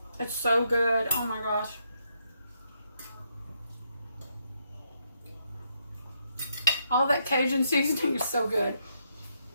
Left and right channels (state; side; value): inverted; both; correlation -0.78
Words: It's so good. Oh my gosh. All that Cajun seasoning is so good.